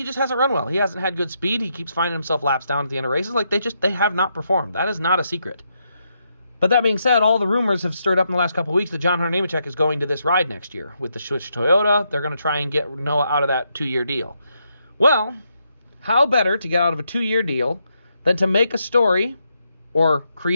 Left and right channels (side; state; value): both; inverted; correlation -0.80